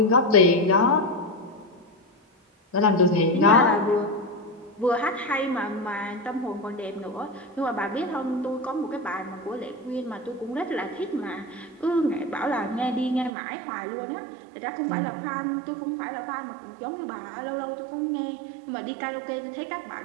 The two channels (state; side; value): drops out; left; at 13.3 s